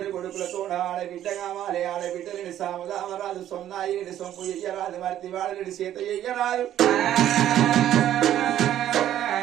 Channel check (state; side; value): quieter; left; 11.8 dB